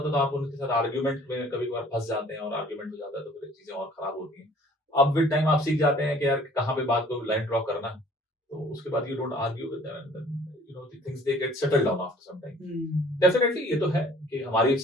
तो आप उनके साथ आर्ग्यूमेंट में कभी कभार फंस जाते हैं और आर्ग्यूमेंट हो जाता है तो फिर चीजें और खराब होती हैं। अब विद टाइम आप सीख जाते हैं कि यार कहाँ पे बात को लाइन ड्रॉ करना, तो उसके बाद you don't argue with them and you know the things they get settled down after some time. Definitely ये तो है कि हमारी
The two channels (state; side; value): normal; both; correlation 0.53